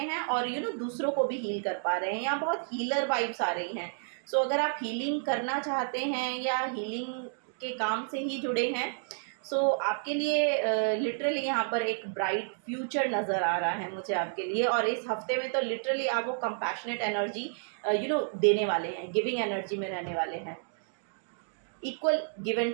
और दूसरों को भी हील कर पा रहे हैं। यहाँ बहुत हीलर वाइब्स आ रही हैं। सो अगर आप हीलिंग करना चाहते हैं या हीलिंग के काम से ही जुड़े हैं, सो आपके लिए लिटरली यहाँ पर एक ब्राइट फ्यूचर नज़र आ रहा है मुझे आपके लिए। और इस हफ्ते में तो लिटरली आप वो कंपैशनेट एनर्जी देने वाले हैं, गिविंग एनर्जी में रहने वाले हैं। इक्वल गिव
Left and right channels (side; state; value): left; silent; digital silence